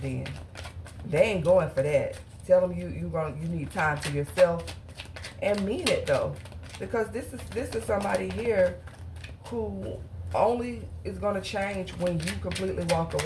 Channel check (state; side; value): identical; both; correlation 1.00